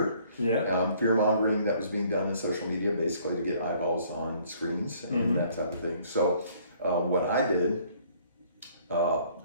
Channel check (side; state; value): both; inverted; correlation -0.60